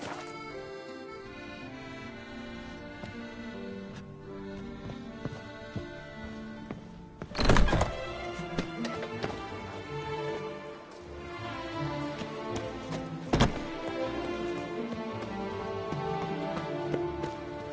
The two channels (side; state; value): both; identical; correlation 1.00